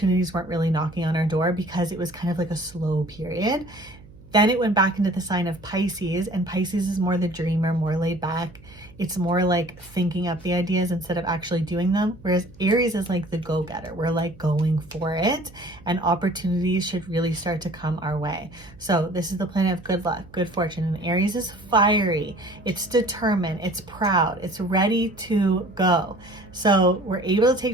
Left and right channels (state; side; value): noise; right; hum, 22 dB below the sound